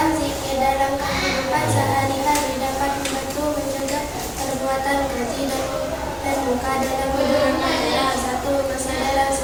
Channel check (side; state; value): both; identical; correlation 1.00